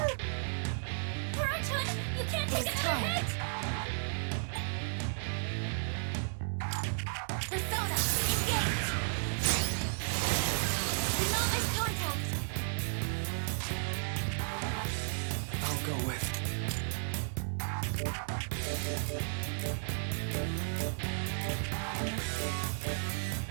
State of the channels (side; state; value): left; silent; 55 dB below the other